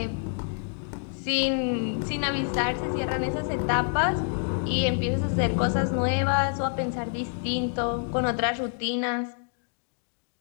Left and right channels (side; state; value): right; silent; 60 dB below the other